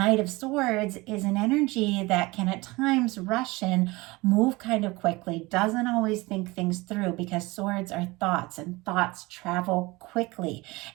of Swords is an energy that can at times rush in, move kind of quickly, doesn't always think things through, because swords are thoughts and thoughts travel quickly.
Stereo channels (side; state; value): left; quieter; 22.5 dB